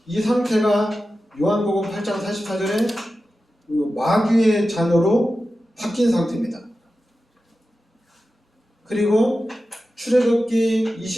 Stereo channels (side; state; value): both; normal; correlation 0.93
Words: 이 상태가 요한복음 8장 44절에 마귀의 자녀로 바뀐 상태입니다. 그리고 출애굽기